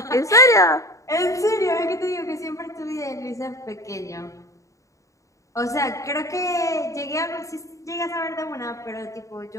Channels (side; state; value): right; late; 0.16 ms